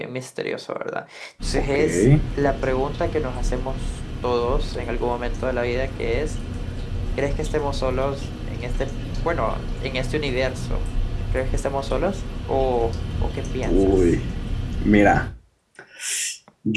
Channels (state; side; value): identical; both; correlation 1.00